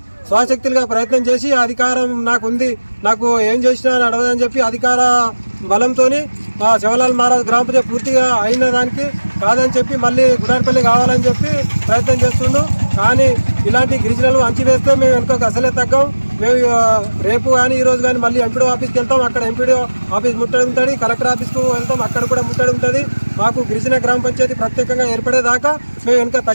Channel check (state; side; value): inverted; both; correlation -1.00